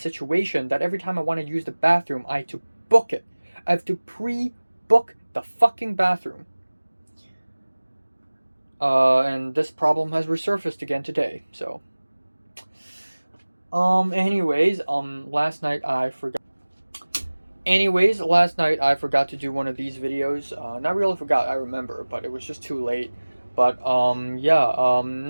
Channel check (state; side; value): inverted; both; correlation -1.00